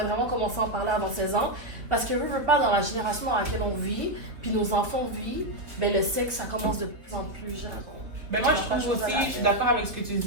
vraiment commencer à en parler avant 16 ans. Parce que je veux pas dans la génération dans laquelle on vit, puis nos enfants vivent, ben le sexe ça commence de plus en plus jeune. Ben moi je trouve aussi, je suis d'accord avec ce que tu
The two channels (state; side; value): late; left; 3.4 ms